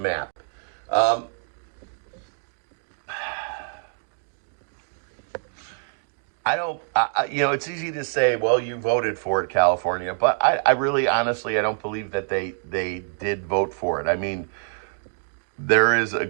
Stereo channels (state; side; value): silent; left; digital silence